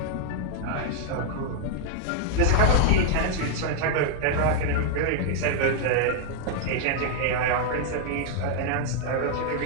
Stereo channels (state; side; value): different; both; correlation 0.00